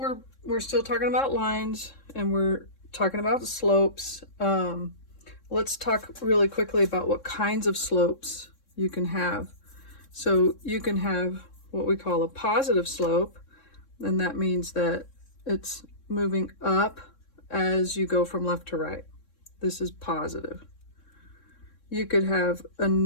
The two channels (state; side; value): late; right; 3.6 ms